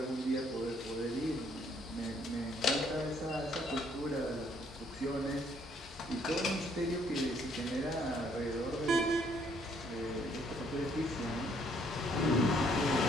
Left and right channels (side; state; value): both; normal; correlation 0.66